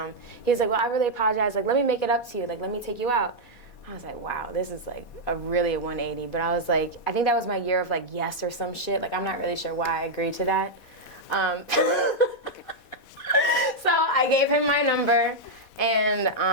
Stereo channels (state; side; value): late; right; 4.1 ms